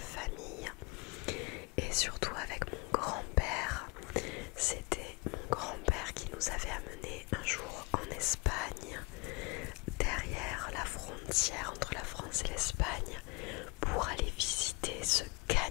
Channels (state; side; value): quieter; right; 27.5 dB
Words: et surtout avec mon grand-père. C'était mon grand-père qui nous avait amenés un jour en Espagne, derrière la frontière entre la France et l'Espagne, pour aller visiter ce